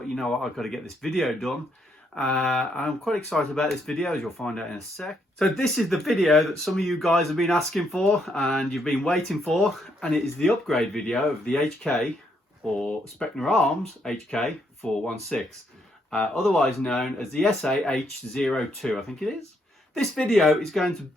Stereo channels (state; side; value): normal; both; correlation 0.74